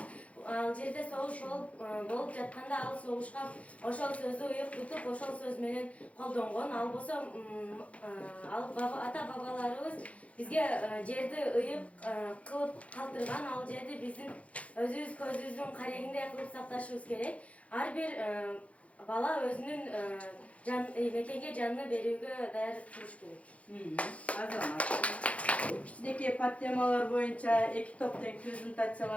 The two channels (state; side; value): late; right; 0.064 ms